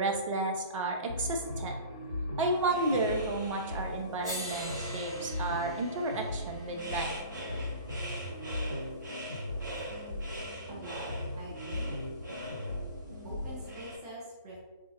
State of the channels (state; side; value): inverted; both; correlation -0.39